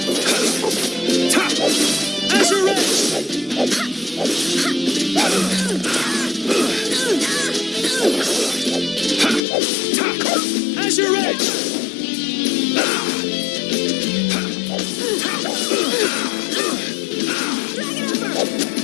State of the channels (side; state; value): right; drops out; at 9.4 s